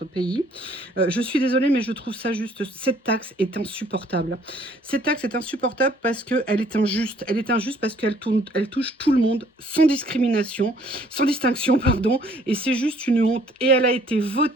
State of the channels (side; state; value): both; normal; correlation 0.60